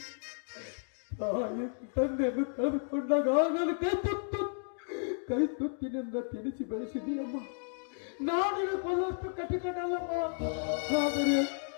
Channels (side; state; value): right; silent; digital silence